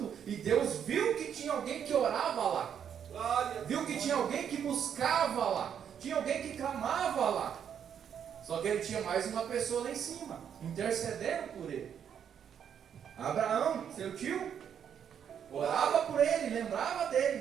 e Deus viu que tinha alguém que orava lá. Viu que tinha alguém que buscava lá. Tinha alguém que clamava lá. Só que ele tinha mais uma pessoa lá em cima, intercedendo por ele. Abraão, seu tio, orava por ele, lembrava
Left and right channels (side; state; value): left; quieter; 8.4 dB